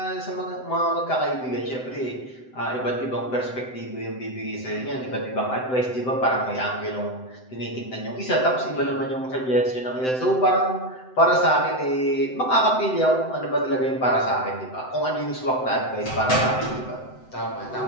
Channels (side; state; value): right; late; 7.8 ms